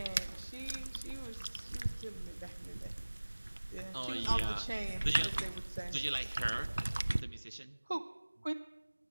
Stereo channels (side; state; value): both; inverted; correlation -1.00